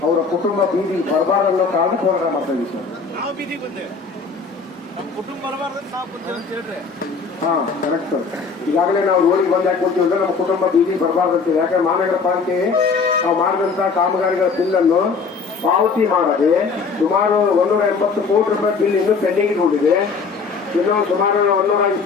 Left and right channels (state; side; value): quieter; right; 4.9 dB